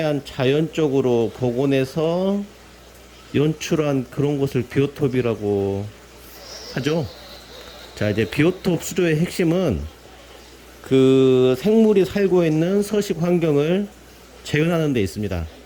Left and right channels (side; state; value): both; identical; correlation 1.00